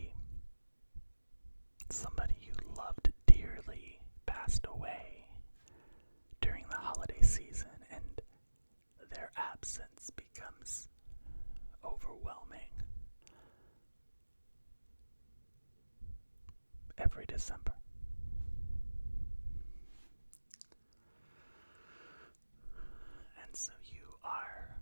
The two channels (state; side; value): inverted; both; correlation -1.00